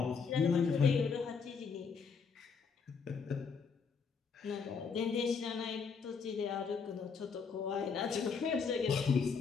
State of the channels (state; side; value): quieter; right; 5.6 dB